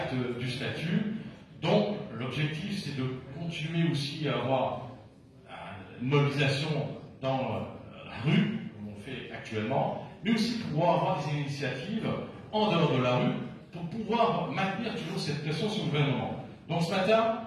du statut, donc l'objectif, c'est de continuer aussi à avoir une mobilisation dans la rue, comme on fait actuellement, mais aussi pouvoir avoir des initiatives en dehors de la rue pour pouvoir maintenir toujours cette pression sur le gouvernement. Donc ce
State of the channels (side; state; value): both; identical; correlation 1.00